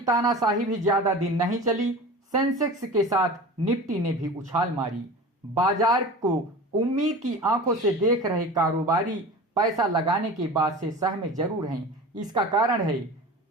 भी ज्यादा दिन नहीं चली। सेंसेक्स के साथ निफ्टी ने भी उछाल मारी। बाजार को उम्मीद की आंखों से देख रहे कारोबारी पैसा लगाने के बाद से सहमे जरूर हैं। इसका कारण है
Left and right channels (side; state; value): both; normal; correlation 0.35